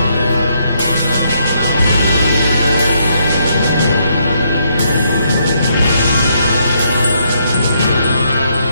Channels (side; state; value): both; inverted; correlation -0.74